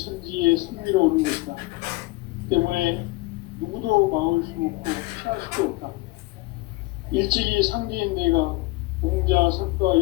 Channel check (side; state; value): right; quieter; 21.7 dB